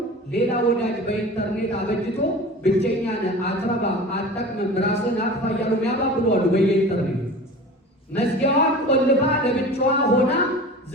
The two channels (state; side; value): normal; both; correlation 0.37